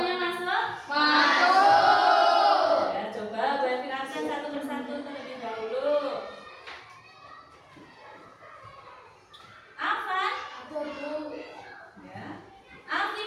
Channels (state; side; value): identical; both; correlation 1.00